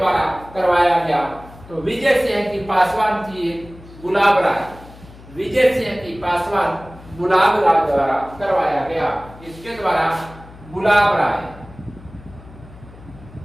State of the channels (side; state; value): left; noise; hum, 20 dB below the sound